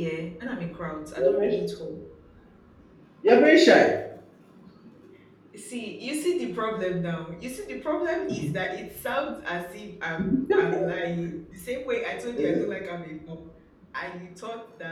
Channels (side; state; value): both; identical; correlation 1.00